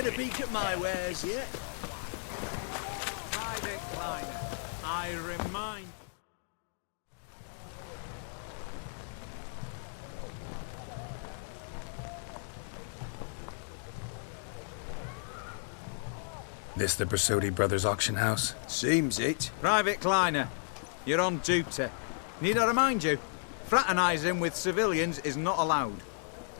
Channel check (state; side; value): silent; right; digital silence